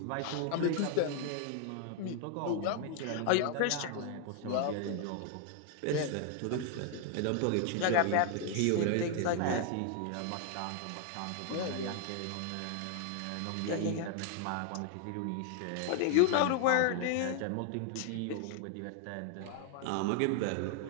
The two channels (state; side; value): different; both; correlation 0.00